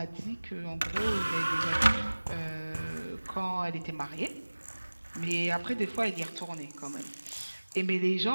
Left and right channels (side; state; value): both; inverted; correlation -1.00